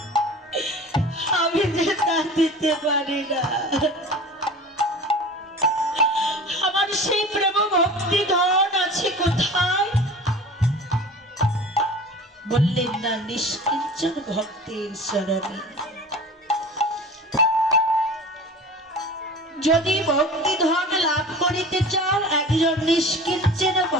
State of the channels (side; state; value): both; normal; correlation 0.39